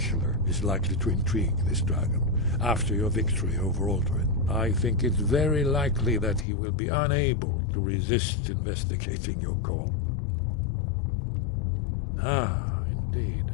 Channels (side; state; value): right; drops out; at 6.5 s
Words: is likely to intrigue this dragon after your victory over Aldrin. I think it's very likely that he will be unable to resist investigating your call. Ah, indeed.